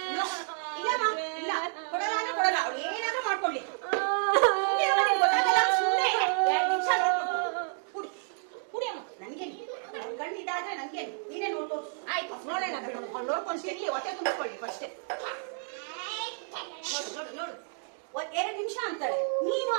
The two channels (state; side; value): silent; left; 58 dB below the other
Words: ಕೊಡಲ್ಲ, ಅವಳು ಏನಾದ್ರೂ ಮಾಡ್ಕೊಳ್ಳಿ. ಕುಡಿಯಮ್ಮ, ನನ್ಗೆ ಗಂಡು ಇದಾದ್ರೆ ನನ್ಗೆ ನೀನೇ ನೋಡ್ಕೊ. ಆಯ್ತು ನೋಡೋಣ ಬಿಡು, ನೋಡ್ಕೊಂಡು ಸಿಗ್ಲಿ, ಹೊಟ್ಟೆ ತುಂಬಿಕೊಳ್ಳಿ ಫಸ್ಟೇ. ನೋಡು ನೋಡು, 2 ನಿಮಿಷ ಅಂತಾಳೆ, ನೀನು